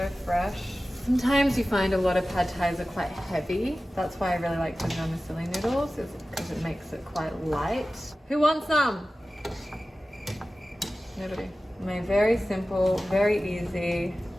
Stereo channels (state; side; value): normal; both; correlation 0.95